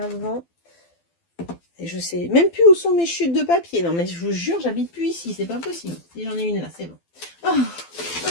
Et je sais même plus où sont mes chutes de papier. Non, mais je vous jure, j'habite plus ici. C'est pas possible. Si j'en ai une là, c'est bon. Oh.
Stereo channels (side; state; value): right; late; 12 ms